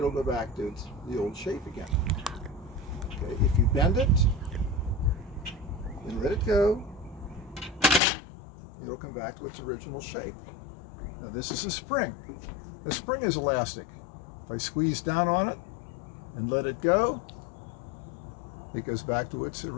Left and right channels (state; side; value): drops out; right; at 8.0 s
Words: go back to the old shape again. Okay, if you bend it and let it go, it'll come back to its original shape. Now this is a spring. The spring is elastic. If I squeeze down on it and let it go, it goes back to its